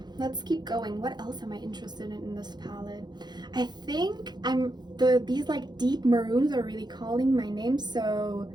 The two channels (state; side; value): late; left; 0.21 ms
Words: let's keep going. What else am I interested in this palette? I think these like deep maroons are really calling my name. So